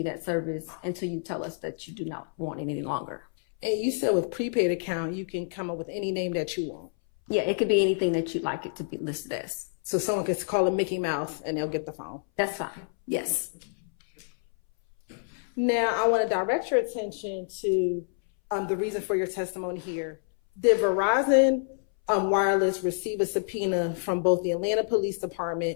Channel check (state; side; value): silent; right; 59 dB below the other